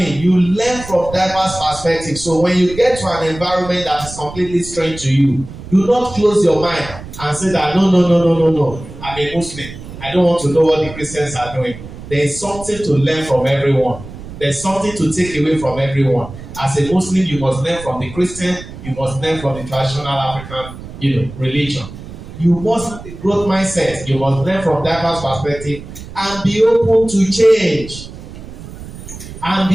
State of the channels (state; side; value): noise; right; rumble, 14 dB below the sound